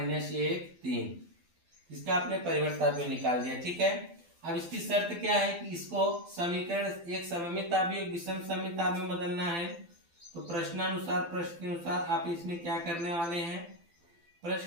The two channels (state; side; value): late; left; 12 ms